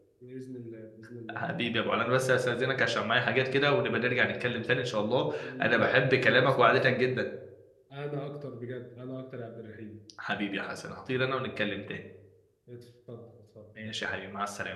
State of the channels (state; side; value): identical; both; correlation 1.00